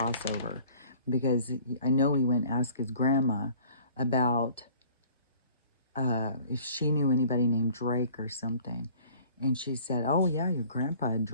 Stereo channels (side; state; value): both; inverted; correlation -0.51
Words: because I know he went and asked his grandma about if she knew anybody named Drake or something. And she said, "Oh yeah, your grandpa